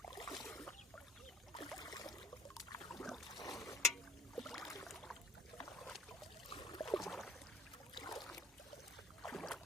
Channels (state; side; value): normal; both; correlation 0.52